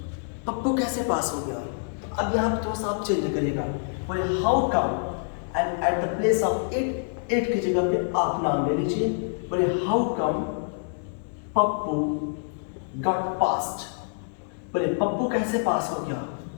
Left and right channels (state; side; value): silent; right; digital silence